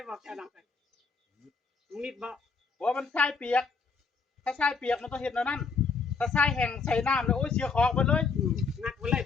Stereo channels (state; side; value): quieter; right; 4.9 dB